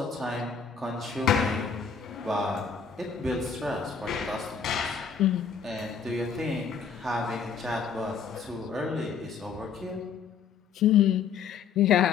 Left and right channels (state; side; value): quieter; right; 6.3 dB